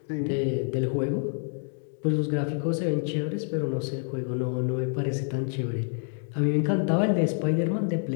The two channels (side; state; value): right; silent; 58 dB below the other